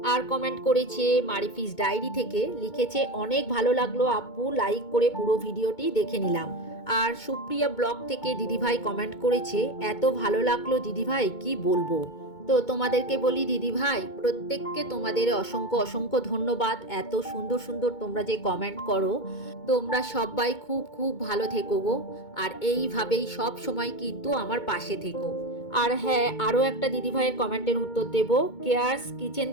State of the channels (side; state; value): right; late; 2.2 ms